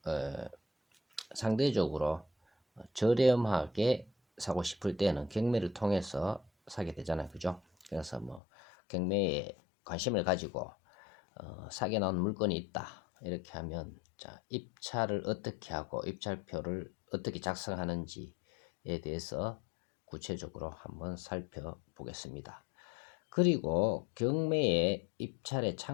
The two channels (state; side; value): drops out; right; at 8.4 s